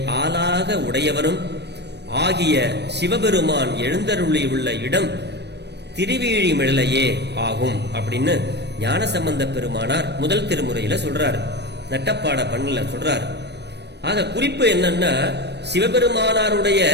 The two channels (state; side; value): late; left; 0.50 ms